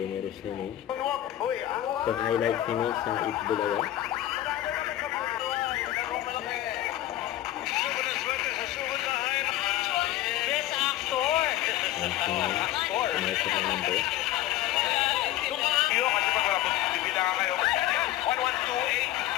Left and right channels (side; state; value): right; quieter; 13.8 dB